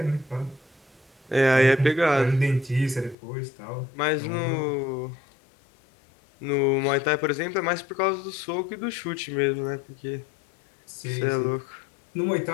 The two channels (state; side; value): drops out; right; at 3.2 s